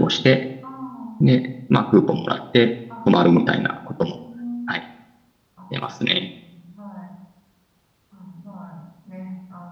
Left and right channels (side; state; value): both; identical; correlation 1.00